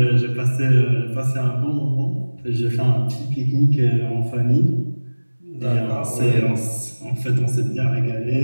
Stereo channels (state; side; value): inverted; both; correlation -1.00